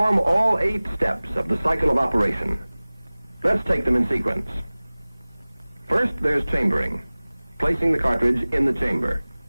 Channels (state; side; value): inverted; both; correlation -0.99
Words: all 8 steps of the cycle of operation. Let's take them in sequence. First, there's chambering, placing the cartridge in the chamber.